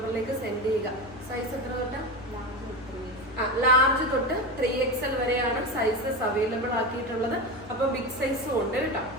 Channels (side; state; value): both; normal; correlation 0.20